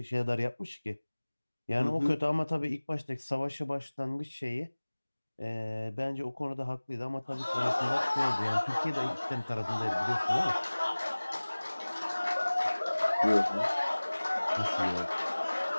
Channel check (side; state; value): both; inverted; correlation -1.00